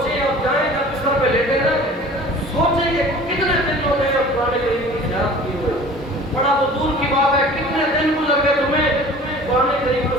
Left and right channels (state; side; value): normal; both; correlation 0.44